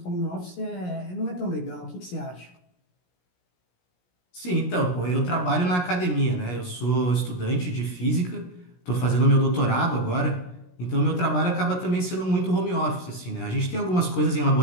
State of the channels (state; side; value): late; right; 17 ms